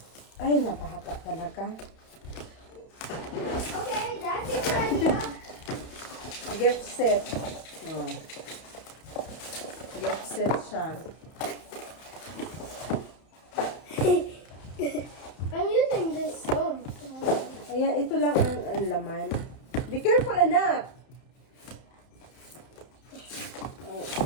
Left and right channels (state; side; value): late; right; 31 ms